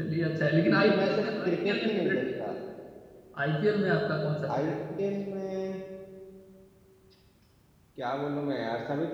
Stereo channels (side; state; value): both; identical; correlation 1.00